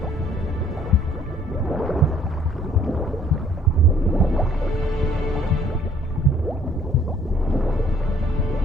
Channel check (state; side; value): normal; both; correlation 0.60